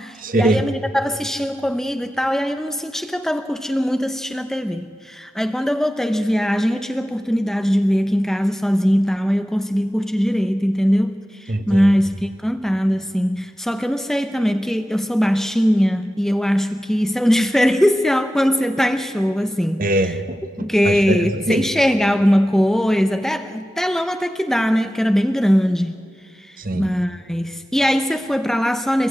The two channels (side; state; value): both; normal; correlation 0.94